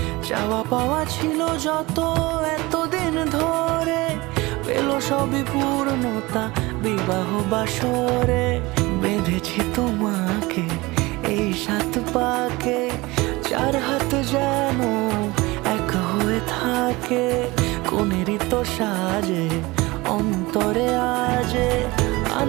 চাওয়া পাওয়া ছিল যত এতদিন ধরে, পেল সবই পূর্ণতা বিবাহ বাসরে। বেঁধেছি তোমাকে এই 7 পাকে, 4 হাত যেন এক হয়ে থাকে। কোনেরই তো সাজে অন্তরে আজে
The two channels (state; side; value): quieter; left; 22.0 dB